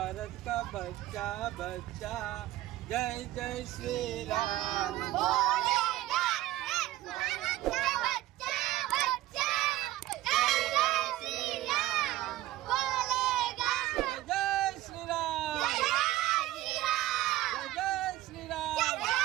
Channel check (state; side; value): quieter; left; 15.6 dB